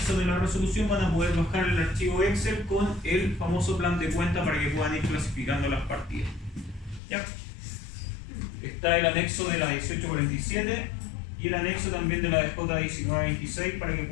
de la resolución van a poder bajar el archivo Excel con el famoso plan de cuenta para que puedan ir clasificando las partidas. ¿Ya? Está el anexo de la 1847 y el anexo también de la DJ 1926 para que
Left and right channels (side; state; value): right; drops out; at 7.0 s